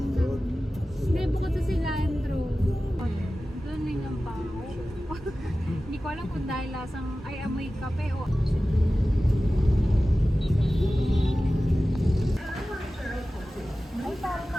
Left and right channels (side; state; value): both; normal; correlation 0.95